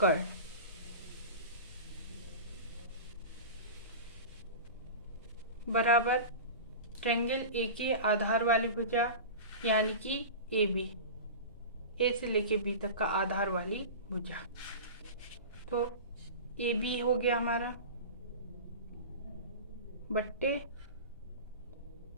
बराबर ट्रायंगल ए के आधार वाली भुजा यानी कि AB, A से लेके B तक का आधार वाली भुजा। तो AB हो गया हमारा बट्टे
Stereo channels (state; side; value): inverted; both; correlation -0.30